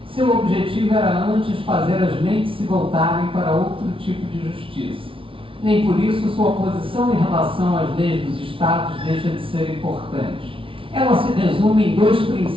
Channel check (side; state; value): left; late; 0.25 ms